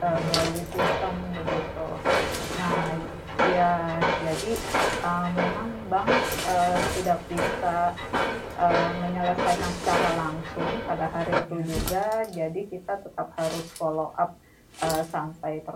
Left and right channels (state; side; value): identical; both; correlation 1.00